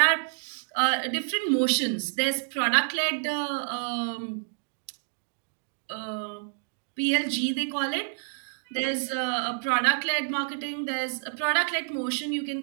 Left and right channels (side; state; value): left; silent; digital silence